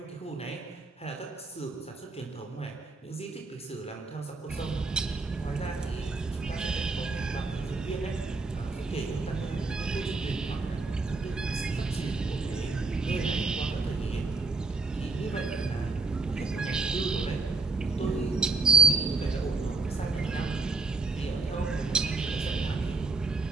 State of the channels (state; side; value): quieter; left; 3.6 dB